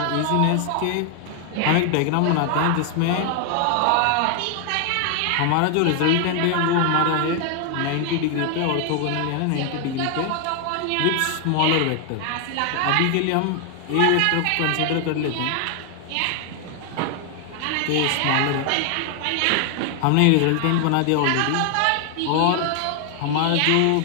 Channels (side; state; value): both; different; correlation 0.00